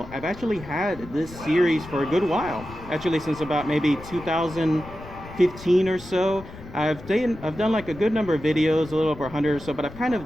I've actually had this series for a good while, actually since about maybe 2015 or so. I've done like a good number of videos, a little over 100 or so, but I've kind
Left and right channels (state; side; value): noise; left; rumble, 16 dB below the sound